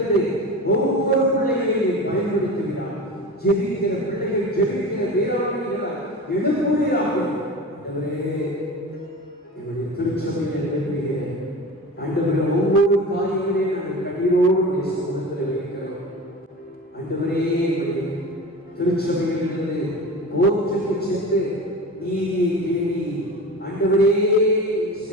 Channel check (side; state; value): both; normal; correlation 0.32